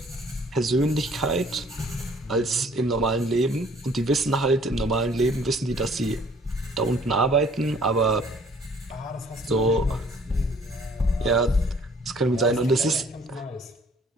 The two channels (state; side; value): normal; both; correlation 0.57